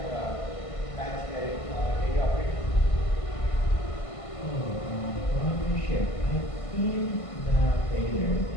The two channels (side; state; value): right; late; 1.5 ms